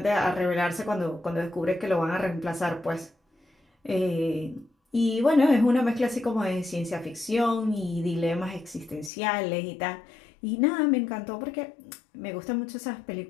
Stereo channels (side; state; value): right; drops out; at 9.1 s